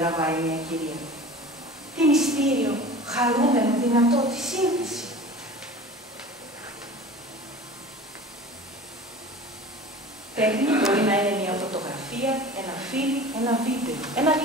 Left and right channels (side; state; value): both; normal; correlation 0.39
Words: μια κυρία. Τι μυστήριο, χαρούμενο, δυνατό, τη σύνθεση. Τέχνη μπορεί να είναι μια φωτογραφία, ένα φιλμ, ένα βίντεο, ένα